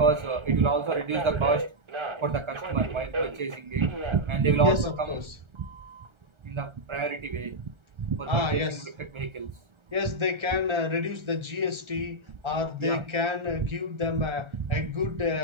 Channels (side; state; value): left; late; 1.3 ms